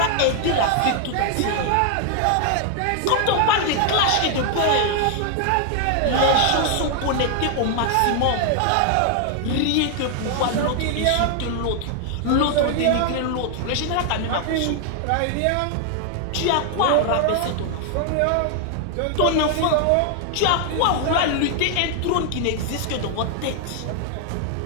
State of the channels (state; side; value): different; both; correlation 0.00